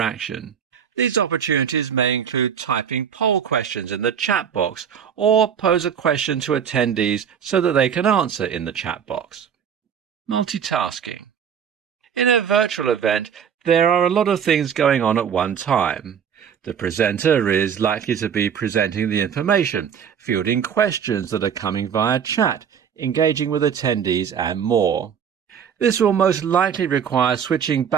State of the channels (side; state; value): left; quieter; 7.9 dB